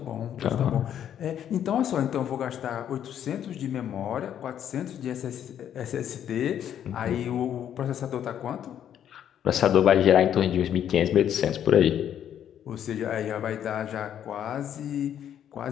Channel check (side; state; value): right; quieter; 9.8 dB